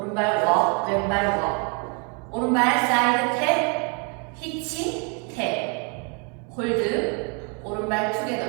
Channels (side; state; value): left; quieter; 34.9 dB